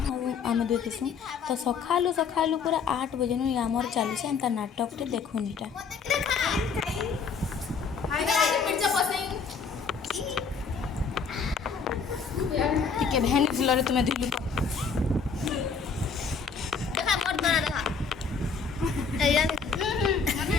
आम दुई थीसूँ। तो सकालू सकालू पूरा 8 बजे नु आमर चली एंता नाटक टे देखुनीटा। ଟିକେ ଭେନି ଫୁଲରେ ତୁମେ ଧୁଇଲୁ ତ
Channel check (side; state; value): right; quieter; 5.6 dB